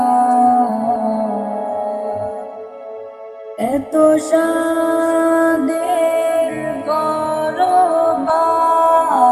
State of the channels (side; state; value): both; identical; correlation 1.00